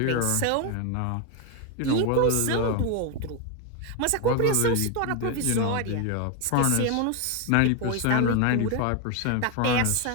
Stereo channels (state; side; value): different; both; correlation 0.01